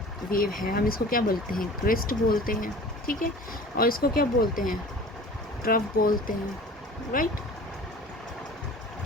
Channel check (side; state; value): both; normal; correlation 0.42